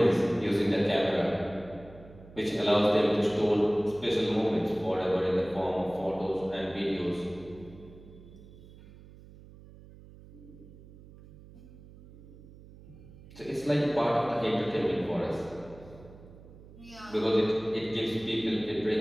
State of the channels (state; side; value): noise; right; hum, 20 dB below the sound